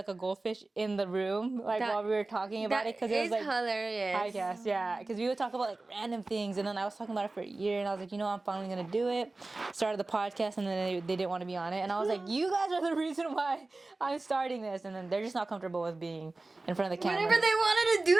a goldfish in the room like while we were talking about it because it was like hilarious. podcast, yeah, because we would talk about like random things, and then I was talking about it for a year, and I was like, I'm finally gonna do it. Started the podcast, and then they didn't want to be on it, and I was like, you guys are the reason why I'm starting this, and then they're just not comfortable with being in front of the camera. Whenever they wanted to do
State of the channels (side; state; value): left; quieter; 3.2 dB